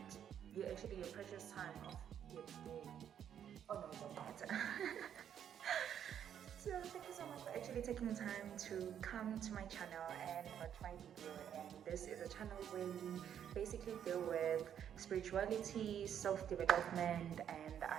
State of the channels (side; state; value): left; quieter; 9.3 dB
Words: your precious time of your day. Oh no, it doesn't matter. So thank you so much for actually taking time to come to my channel and watch my video. And this is a channel where we basically deal with spirituality, self-development, and